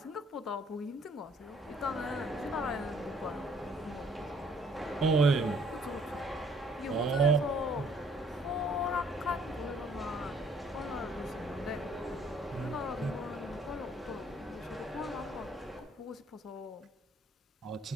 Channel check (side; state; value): both; normal; correlation 0.61